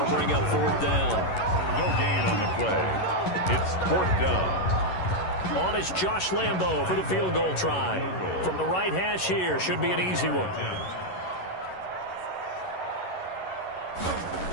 bring up 4th down. No gain on the play. It's 4th down. On is Josh Lambo for the field goal try. From the right hash here, should be an easy one.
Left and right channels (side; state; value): right; late; 11 ms